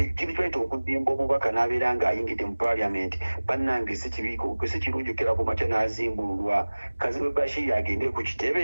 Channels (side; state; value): both; inverted; correlation -1.00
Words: kyaita okuzimba omubaka n'abeera ng'ayingidde mu parliament bannange si kirungi okera ku makya n'azimbululwa. Kazibe Bashiri agende ku